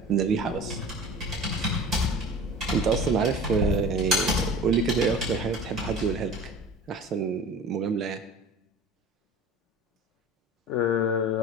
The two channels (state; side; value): normal; both; correlation 0.39